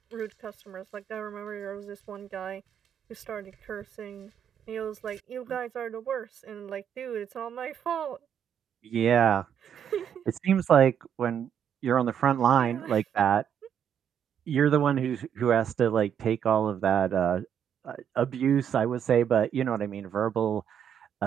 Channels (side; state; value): left; quieter; 8.7 dB